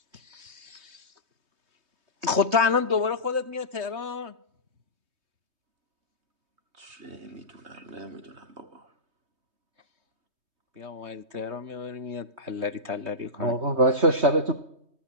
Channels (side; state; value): left; late; 3.2 ms